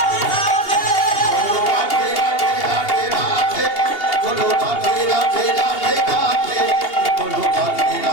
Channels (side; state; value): right; late; 2.8 ms